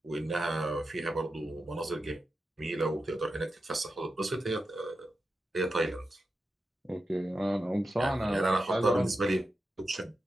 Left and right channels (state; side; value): normal; both; correlation 0.90